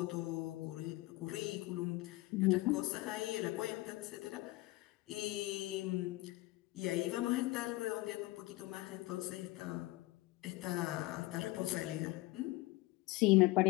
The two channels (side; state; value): right; quieter; 20.2 dB